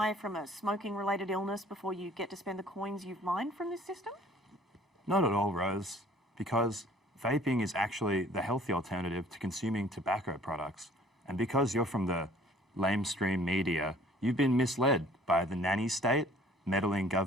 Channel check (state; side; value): normal; both; correlation 0.54